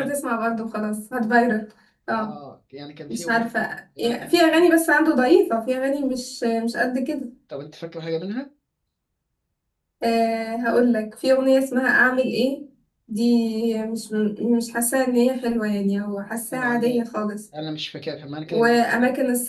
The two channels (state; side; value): identical; both; correlation 1.00